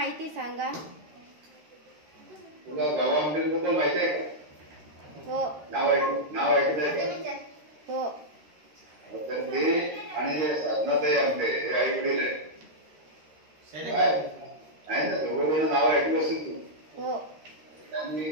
सांगा. तुला गावाबद्दल माहिती आहे का? हो. नाव ऐकत आहे का? हो. तर ते आणि साधनाताई आमटे हे आई वडील आहे ना, दोघं नाव ऐकलं असेल तू. हो. त्यांनी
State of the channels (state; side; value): late; left; 13 ms